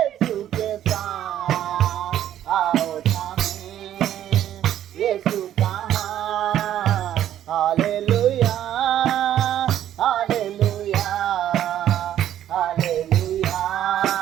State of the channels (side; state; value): left; quieter; 11.4 dB